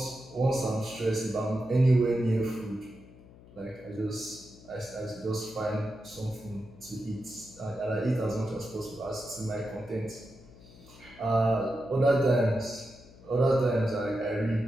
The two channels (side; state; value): left; noise; hum, 21 dB below the sound